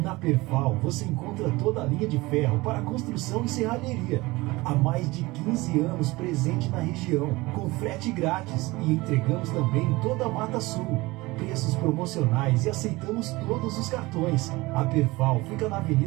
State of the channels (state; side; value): quieter; left; 21.4 dB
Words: Perfal você encontra toda a linha de ferro para construção e serralheria. Há mais de 15 anos presente na região, com frete grátis, e entregamos também em toda a Mata Sul. Preços promocionais e aceitamos todos os cartões. A Perfal fica na